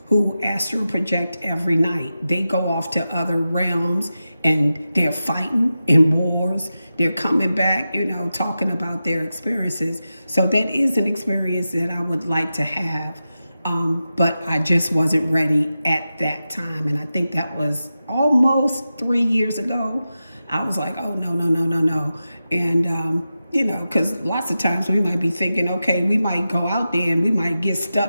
who astral project every night. They go off to other realms and they're fighting in wars. They're coming back, talking about their experiences. So that is an experience that I would like to have. But I just wasn't ready at that time. And I think that was almost 3 years ago. I was like, oh, no, no, no, no, no. And, because lots of times we might be thinking, okay, we might go out there and we might get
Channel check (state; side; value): inverted; both; correlation -0.92